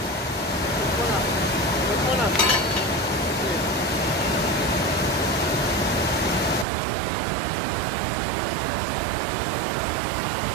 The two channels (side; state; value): left; drops out; at 6.7 s